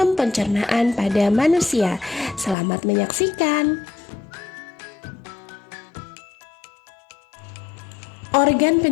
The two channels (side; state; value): right; drops out; at 2.6 s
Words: pencernaan pada manusia. Selamat menyaksikan. Organ